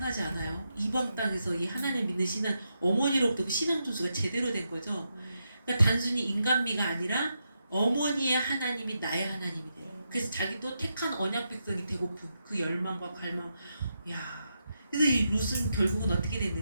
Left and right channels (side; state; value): both; inverted; correlation -0.84